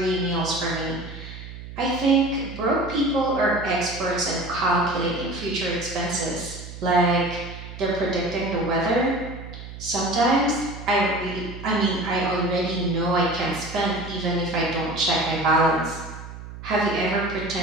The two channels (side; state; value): right; noise; hum, 12 dB below the sound